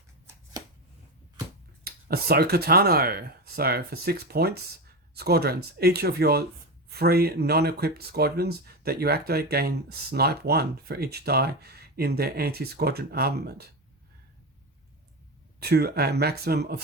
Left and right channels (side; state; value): both; normal; correlation 0.18